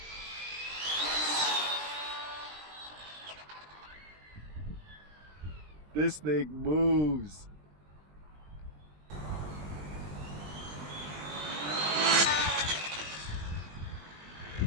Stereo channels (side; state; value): left; late; 20 ms